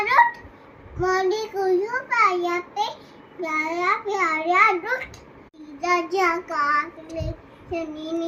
रोट मुंडी को जो पाया पे प्यारा प्यारा रोट राजा काटले शनि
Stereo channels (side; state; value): both; identical; correlation 1.00